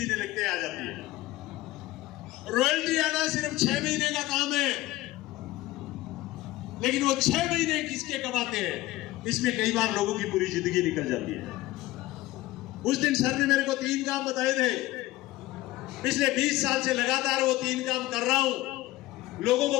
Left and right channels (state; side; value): quieter; right; 17.5 dB